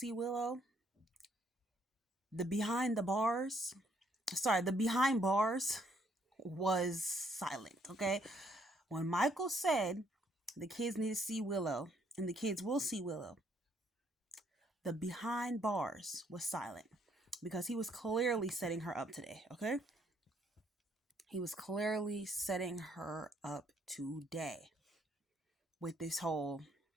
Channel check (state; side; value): normal; both; correlation 0.69